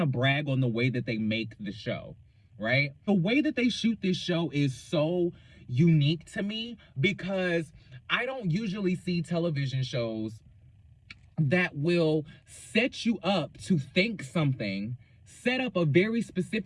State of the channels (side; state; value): both; identical; correlation 1.00